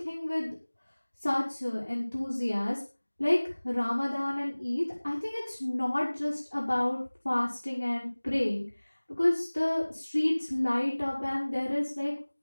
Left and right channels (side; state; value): both; inverted; correlation -1.00